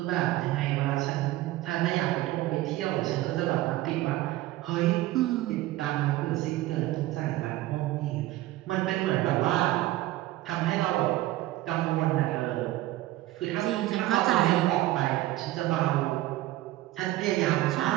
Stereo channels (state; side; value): quieter; left; 16.3 dB